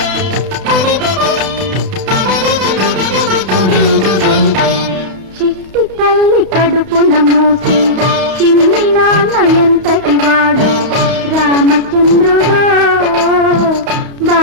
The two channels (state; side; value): late; left; 32 ms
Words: చిట్టి తల్లి కడుపున మోసి చిన్ని నాన్న ఎంతటి వాడు రామచంద్రుడో